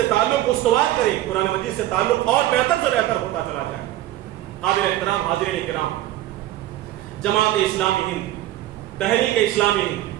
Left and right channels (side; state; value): left; quieter; 14.5 dB